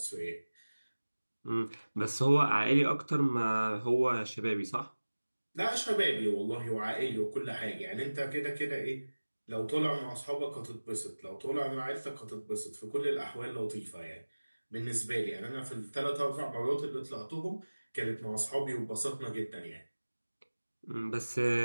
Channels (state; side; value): inverted; both; correlation -1.00